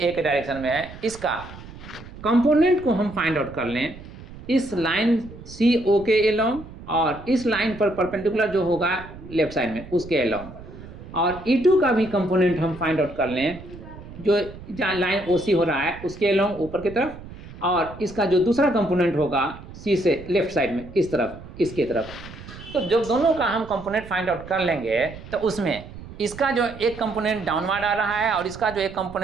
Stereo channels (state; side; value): noise; right; rumble, 15 dB below the sound